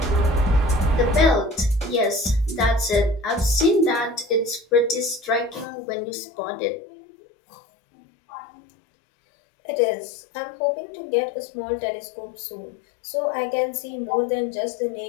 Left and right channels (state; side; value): drops out; right; at 5.7 s